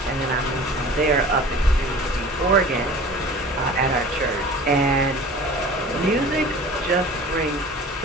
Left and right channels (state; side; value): normal; both; correlation 0.42